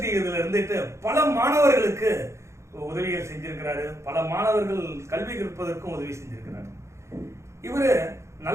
இதுல இருந்துட்டு பல மாணவர்களுக்கு உதவிகள் செஞ்சிருக்கிறாரு. பல மாணவர்கள் கல்வி கற்பதற்கும் உதவி செஞ்சிருக்கிறார். இவரு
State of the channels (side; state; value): left; late; 0.14 ms